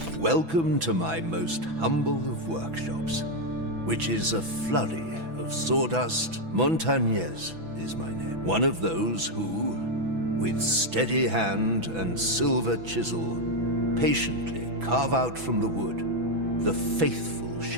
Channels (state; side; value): late; left; 6.1 ms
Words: welcome to my most humble of workshops, which is a flurry of sawdust. Montagnez is my name. One of those who, with steady hand and silver chisel, patiently carve out from the wood the faithful